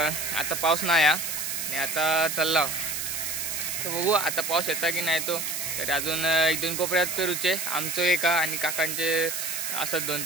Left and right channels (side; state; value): right; noise; hiss, 3 dB below the sound